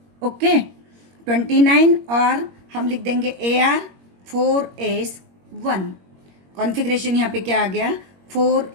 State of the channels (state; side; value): late; left; 21 ms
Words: ओके 29, और हम लिख देंगे AR 4s1. कॉन्फ़िगरेशन यहाँ पे क्या आ गया